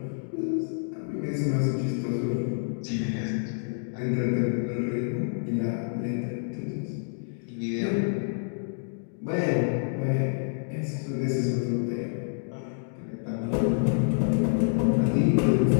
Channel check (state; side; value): silent; right; digital silence